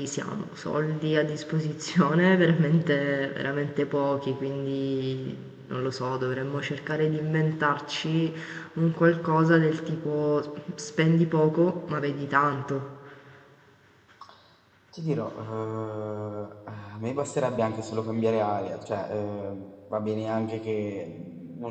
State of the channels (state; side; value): identical; both; correlation 1.00